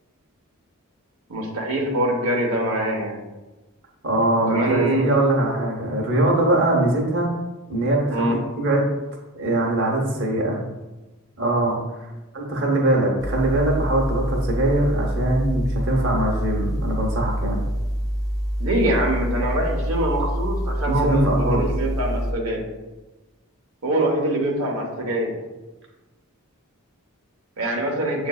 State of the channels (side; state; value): both; normal; correlation 0.34